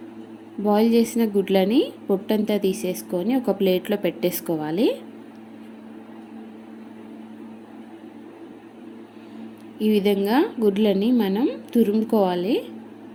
బాయిల్ చేసిన గుడ్లని పొట్టంతా తీసేసుకొని ఒక ప్లేట్లో పెట్టేసుకోవాలి. ఈ విధంగా గుడ్లని మనం తురుముకోవాలి.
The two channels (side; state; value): both; identical; correlation 1.00